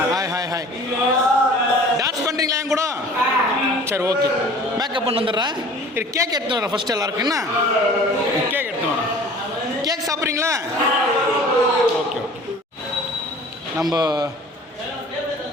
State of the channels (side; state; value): both; normal; correlation 0.46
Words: ஹாய். டான்ஸ் பண்ணுறீங்களா என் கூட? சரி, ஓகே. மேக்கப் பண்ணி வந்துடுறேன். இது கேக் எடுத்து வரேன் ஃபஸ்ட்டு எல்லாருக்கும். என்ன கேக் எடுத்து வரேன். கேக் சாப்பிட்றீங்களா? ஓகே.